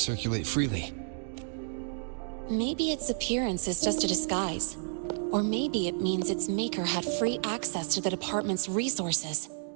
freely? Maybe its appearance is just a disguise. Or maybe it means its maker had free access to the department's resources.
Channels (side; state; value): left; silent; digital silence